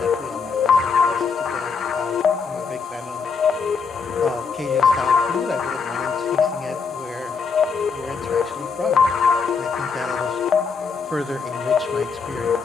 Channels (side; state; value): right; quieter; 5.5 dB